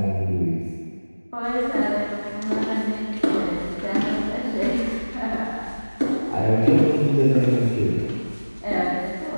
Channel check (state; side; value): inverted; both; correlation -1.00